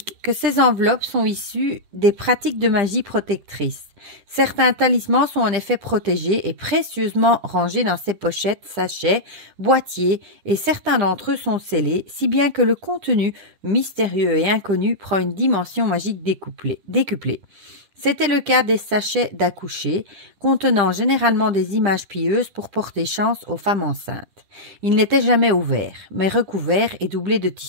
que ces enveloppes sont issues des pratiques de magie protectrice. Certains talismans sont en effet protégés et précieusement rangés dans ces pochettes, sachets, boîtiers, et certains d'entre eux sont scellés, si bien que le contenu mystérieux et inconnu prend une dimension magique décuplée. C'était le cas des sachets d'accoucher, contenant généralement des images pieuses pour porter chance aux femmes enceintes. Ils n'étaient jamais ouverts, mais recouverts et doublés de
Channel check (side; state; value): left; late; 10 ms